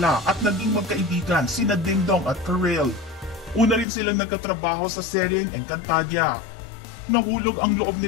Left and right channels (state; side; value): drops out; right; at 3.9 s